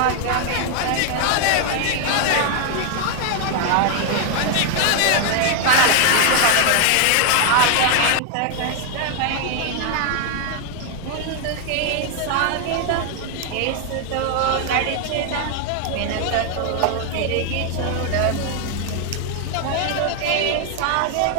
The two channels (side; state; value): both; different; correlation 0.00